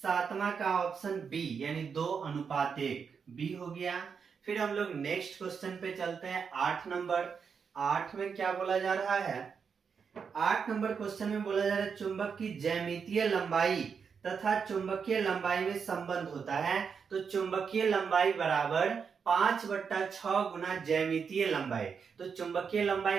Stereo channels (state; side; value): quieter; left; 6.2 dB